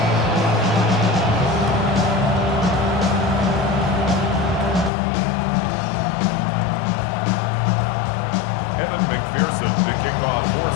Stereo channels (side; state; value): right; drops out; at 4.9 s